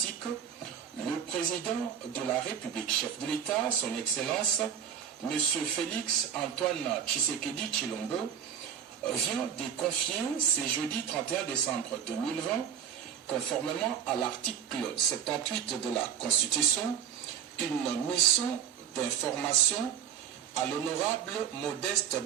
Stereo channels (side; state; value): left; quieter; 8.6 dB